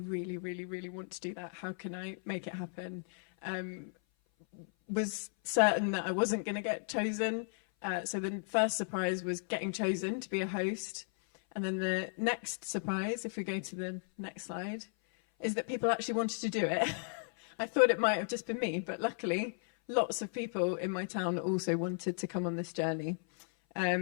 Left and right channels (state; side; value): silent; right; 54 dB below the other